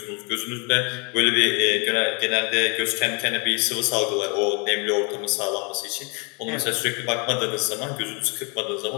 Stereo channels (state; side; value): quieter; right; 32.7 dB